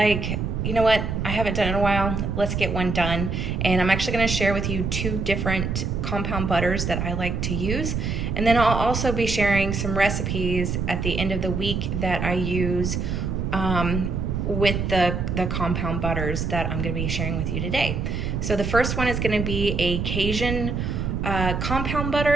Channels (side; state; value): right; noise; rumble, 2 dB below the sound